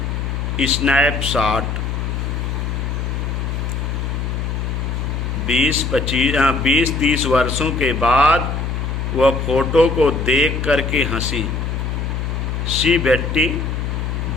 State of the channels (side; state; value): left; noise; hum, 2 dB below the sound